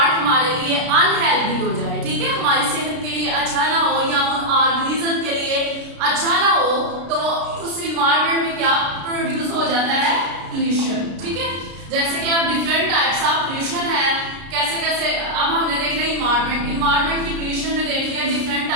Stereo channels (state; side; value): late; left; 33 ms